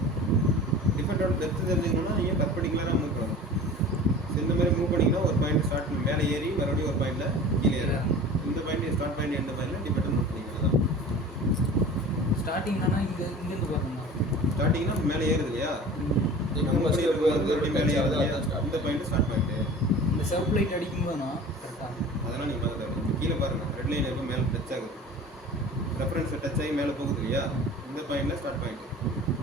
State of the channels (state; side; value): normal; both; correlation 0.40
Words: டிஃபெக்டோட டெப்த் தெரிஞ்சுக்கணும்னா நீங்கள் பர்பெண்டிகுலராக மூவ் பண்ணணும். இந்த மாதிரி மூவ் பண்ணிங்கன்னா ஒரு பாயிண்ட் ஸ்டார்ட் மேலே ஏறி மறுபடியும் ஒரு பாயிண்டில் கீழே ஏறும். இந்த பாயிண்ட் ஸ்டார்ட் பாயிண்ட் எண்டு பாயிண்டில் டிஃபெக்ட் நோட் பண்ணிக்கலாம். தான் ஸ்டார்டிங் தானே இங்கேருந்து பாருங்க. ஸ்டார்டிங்னா மேலே ஏறுது இல்லையா? மறுபடியும் மேலே ஏறுது இல்லையா? இந்த பாயிண்ட் ஸ்டார்ட் பாயிண்ட்டு. இந்த செல்ஃப் லைட் அடிக்கும்போதுனா கரெக்டாக அதெல்லாம் நீங்கள் பார்க்க கீழே பாருங்கள். ரெட் லைன் எப்போ மேலே டச் ஆகுது, ரெஃபரன்ஸை டச் ஆகி மேலே போகுது இல்லையா? இந்த பாயிண்டில் ஸ்டார்ட் பாயிண்ட்டு.